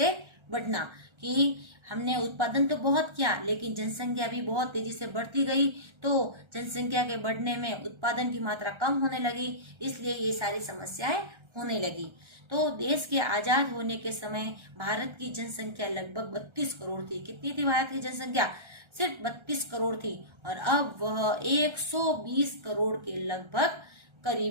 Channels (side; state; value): left; late; 1.3 ms